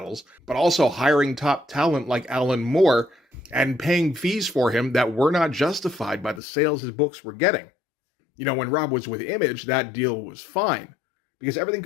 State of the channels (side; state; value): right; drops out; at 6.4 s